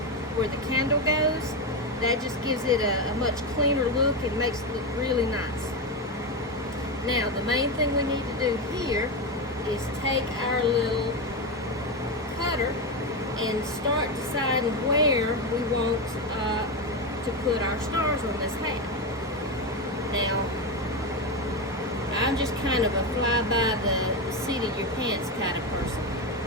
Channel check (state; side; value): normal; both; correlation 0.12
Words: where the candle goes. That just gives it a much cleaner look and makes it look really nice. Now the main thing we need to do here is take our little cutter and start deciding where we want to put our stars on this hat. Now I'm just kind of a fly by the seat of your pants kind of person.